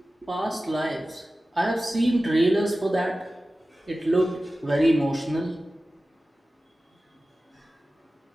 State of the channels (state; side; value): normal; both; correlation 0.96